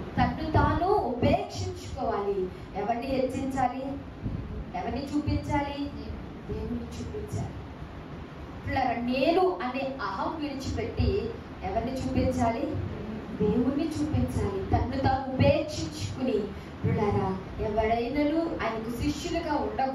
తన్ను తాను ఉపేక్షించుకోవాలి. ఎవరిని హెచ్చించాలి? ఎవరిని చూపించాలి? దేవుని చూపించాలి. నేను అనే అహం విడిచిపెట్టి ఎవరిని చూపించాలి? దేవుణ్ణి చూపించాలి. తన్ను తాను ఉపేక్షించుకుని ఎవరైనాను ఆయనకు శిష్యులుగా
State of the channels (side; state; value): both; identical; correlation 1.00